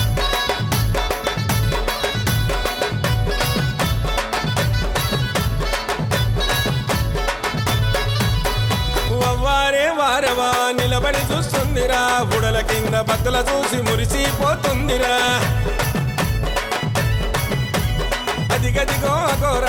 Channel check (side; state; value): both; identical; correlation 1.00